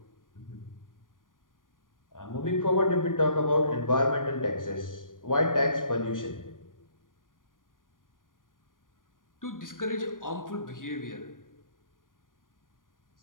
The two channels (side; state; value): right; late; 0.89 ms